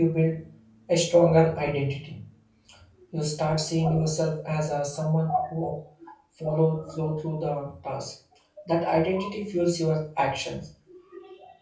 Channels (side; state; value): both; identical; correlation 1.00